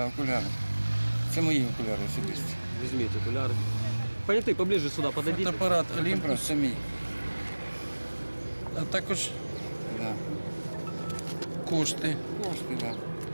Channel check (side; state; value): both; inverted; correlation -1.00